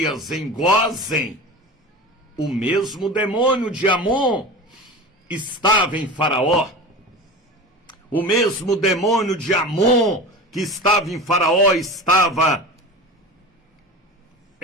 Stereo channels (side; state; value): both; normal; correlation 0.31